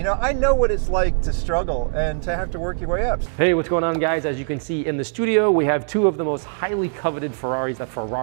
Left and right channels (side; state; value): left; silent; digital silence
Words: know, I know what it's like to struggle and to have to work your way up. Hey, what's going on, guys? As you can see in the studio, we have two of the most highly coveted Ferraris that